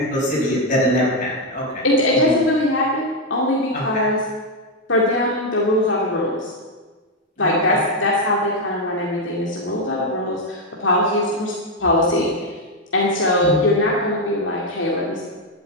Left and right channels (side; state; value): both; normal; correlation 0.03